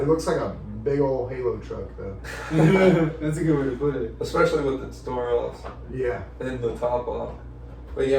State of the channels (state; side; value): identical; both; correlation 1.00